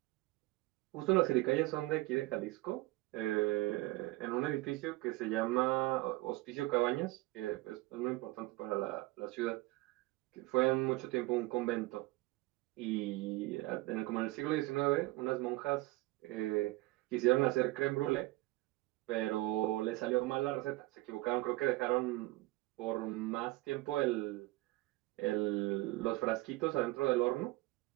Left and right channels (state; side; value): quieter; left; 20.1 dB